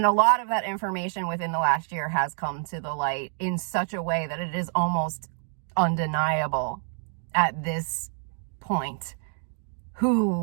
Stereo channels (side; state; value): left; silent; 60 dB below the other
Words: a lot of that information within the last year has come to the light in such a way that it is almost undeniable at this point